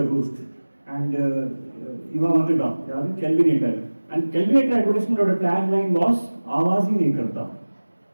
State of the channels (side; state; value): both; inverted; correlation -1.00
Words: roost and இவன் வந்துட்டான் யாரு Kelvinator and Kelvinator advertisementோட tagline was आवाज ही नहीं करता